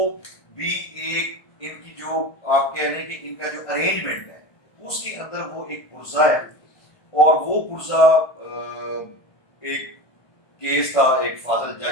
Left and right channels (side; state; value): right; late; 1.5 ms